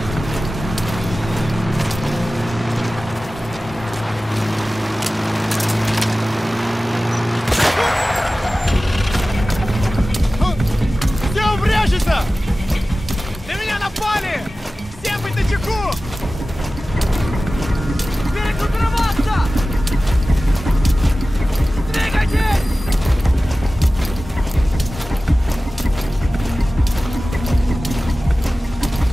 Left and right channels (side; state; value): both; normal; correlation 0.96